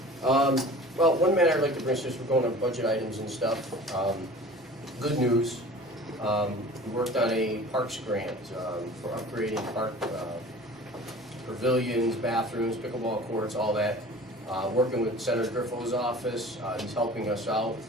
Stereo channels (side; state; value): both; normal; correlation 0.42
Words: well, one matter I'd like to bring, since we're going on budget items and stuff, good news. We worked on a parks grant for upgrading park pavilions, bathrooms, pickleball courts, all that. Working with Senator Griffo's office, he's helping us out.